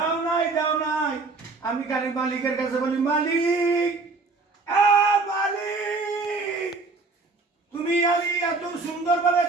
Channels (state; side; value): quieter; left; 3.8 dB